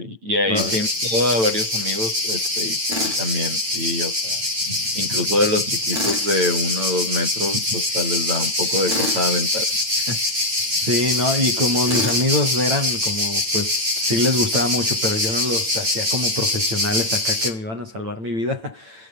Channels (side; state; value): left; late; 9.0 ms